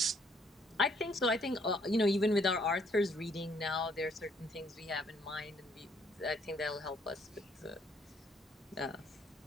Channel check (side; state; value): both; normal; correlation 0.66